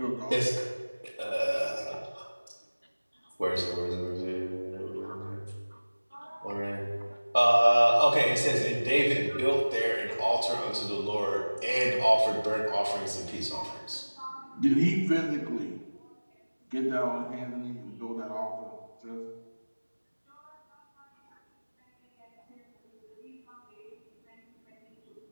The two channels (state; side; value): inverted; both; correlation -1.00